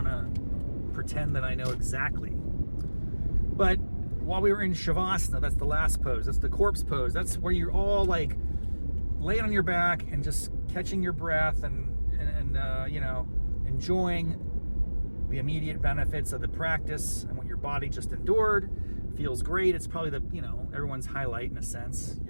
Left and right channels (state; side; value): inverted; both; correlation -1.00